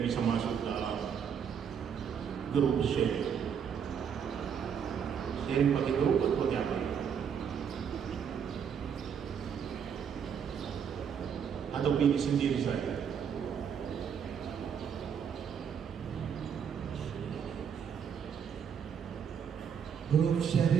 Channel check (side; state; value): left; quieter; 7.6 dB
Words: bisa masuk dalam grup sharing. Sharing pakai grup atau pakai apa? Atau pilih sendiri saja? Grup